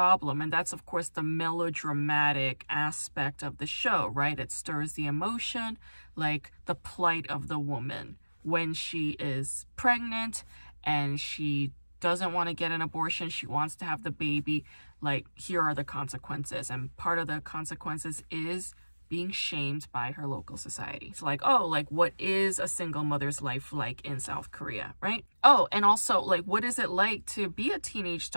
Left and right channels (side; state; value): both; inverted; correlation -1.00